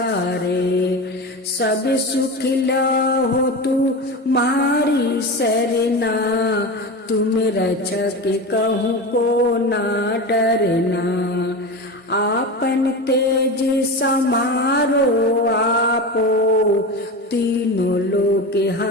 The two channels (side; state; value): both; normal; correlation 0.25